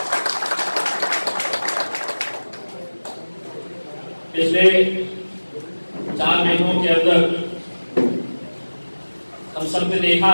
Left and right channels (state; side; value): inverted; both; correlation -1.00